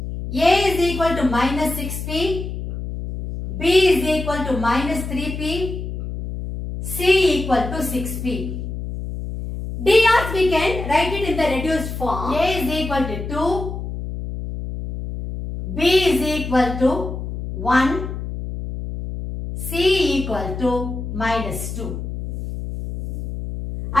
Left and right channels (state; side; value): noise; left; hum, 6 dB below the sound